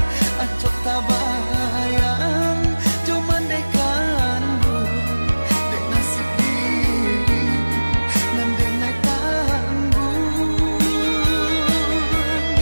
acok tabayang cuman dekan bu dek nasib diri dan denai tanggung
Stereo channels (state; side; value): inverted; both; correlation -1.00